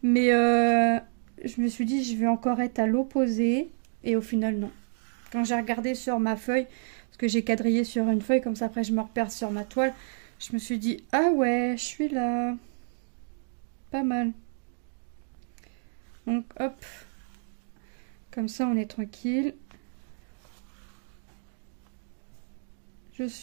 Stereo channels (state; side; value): silent; left; digital silence